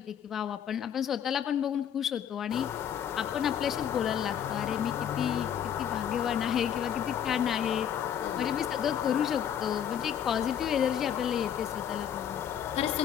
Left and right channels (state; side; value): quieter; right; 9.2 dB